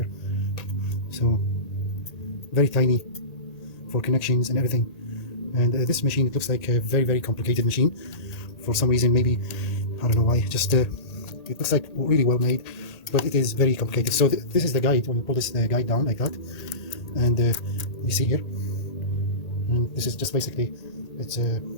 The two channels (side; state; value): right; late; 1.8 ms